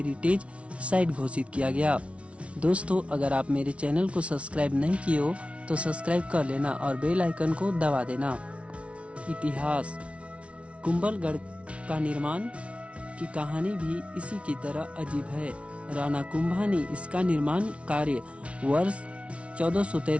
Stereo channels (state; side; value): late; left; 0.062 ms